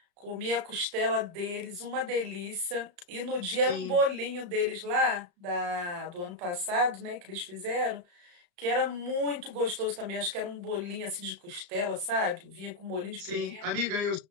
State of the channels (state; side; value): late; left; 34 ms